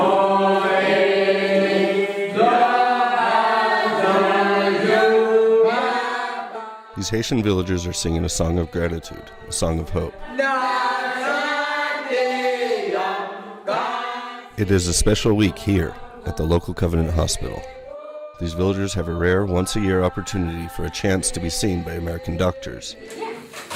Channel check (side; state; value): both; identical; correlation 1.00